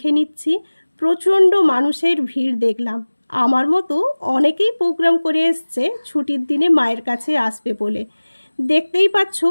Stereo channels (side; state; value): both; inverted; correlation -1.00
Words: নিচ্ছি। প্রচণ্ড মানুষের ভিড় দেখলাম। আমার মতো অনেকেই প্রোগ্রাম করে এসছে ছুটির দিনে মায়ের কাছে আসবে বলে। দেখতেই পাচ্ছ